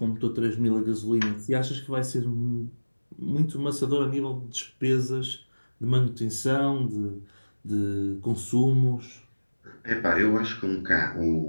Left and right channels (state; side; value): inverted; both; correlation -1.00